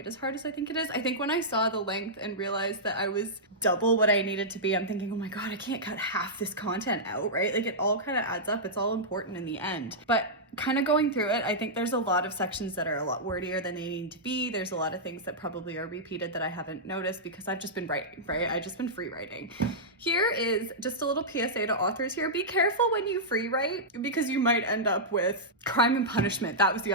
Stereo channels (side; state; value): both; normal; correlation -0.11